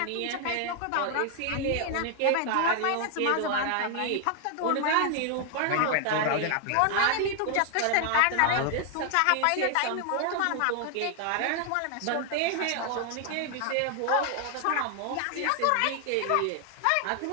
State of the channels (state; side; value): different; both; correlation 0.00